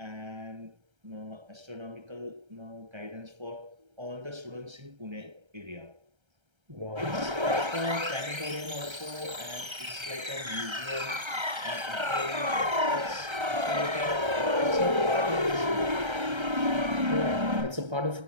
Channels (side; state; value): left; late; 1.3 ms